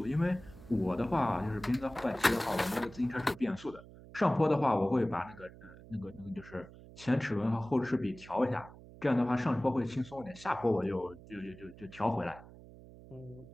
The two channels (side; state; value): right; noise; hum, 19 dB below the sound